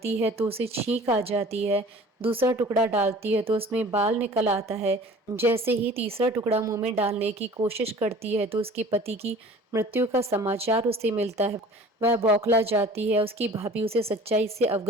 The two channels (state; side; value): normal; both; correlation 0.45